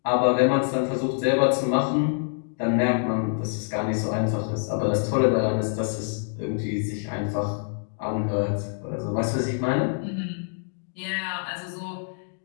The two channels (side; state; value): right; silent; digital silence